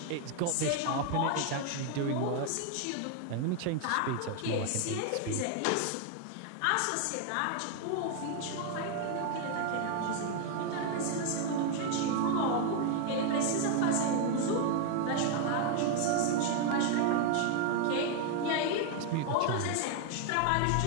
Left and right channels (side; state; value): both; different; correlation 0.00